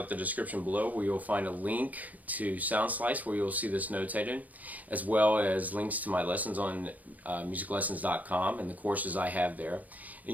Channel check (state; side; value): late; left; 0.078 ms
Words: the description below, where you'll find a link to Soundslice where you'll see this notated, as well as links to my lessons on musiclessons.com and the courses I have there. And